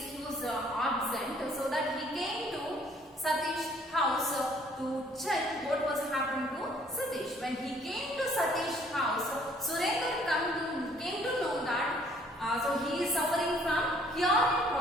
he was absent. So that he came to Satish's house to check what was happening to Satish. When he came to Satish's house, Surendra came to know that so he is suffering from hearing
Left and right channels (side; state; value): both; normal; correlation 0.60